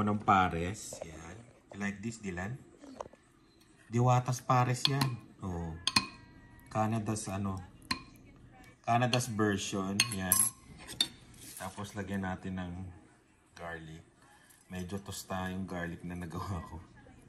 ng pares. Yan. You like this, Dylan? Diwatas pares yan. Canada's version. Yan. Tapos lagyan natin ng garlic. Medyo tosta yung garlic na nagawa ko.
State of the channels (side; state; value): both; identical; correlation 1.00